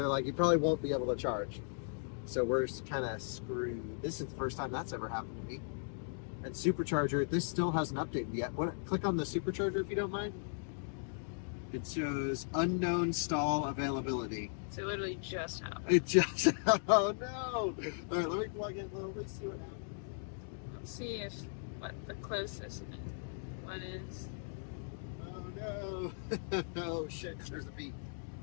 like, you probably won't be able to charge. So we're kind of screwed. This is the first time that's ever happened to me. And Supercharger, this still hasn't updated yet. Click on the Supercharger if you don't mind. It shows unknown stall availability. So it literally just happened. It just, oh no. All right, let me plug in. Let's see what happens. Let's see if what the closest one is. Oh no. Oh shit, there's a beep.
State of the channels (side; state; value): right; silent; digital silence